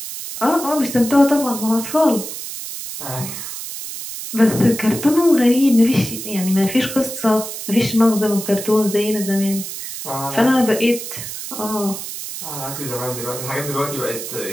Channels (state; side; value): noise; right; hiss, 8 dB below the sound